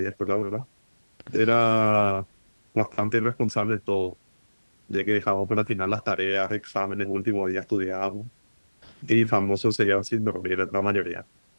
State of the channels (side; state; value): both; inverted; correlation -1.00